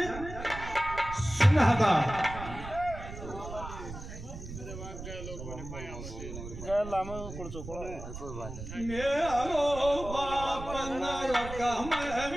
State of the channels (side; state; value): right; noise; rumble, 10 dB below the sound